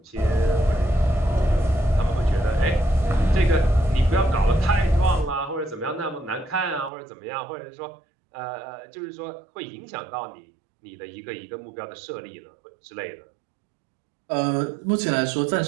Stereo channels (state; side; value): drops out; left; at 6.9 s